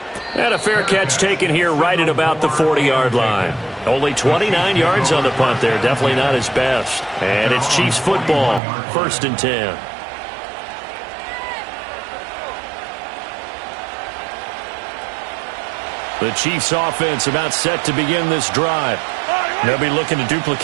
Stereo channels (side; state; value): left; drops out; at 8.6 s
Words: And a fair catch taken here right at about the 40-yard line. Only 29 yards on the punt there. Definitely not his best. And it's Chiefs football. 1st and 10. The Chiefs offense about set to begin this drive. They'll be looking to